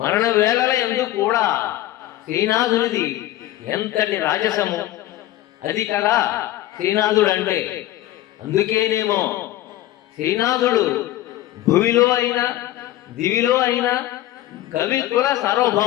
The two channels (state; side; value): quieter; right; 14.7 dB